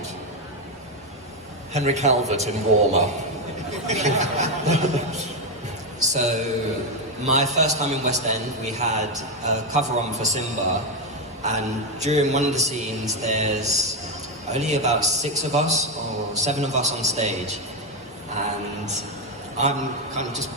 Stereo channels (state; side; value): normal; both; correlation 0.07